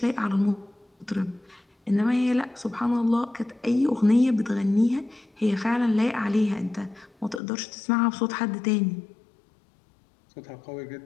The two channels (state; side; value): drops out; right; at 7.4 s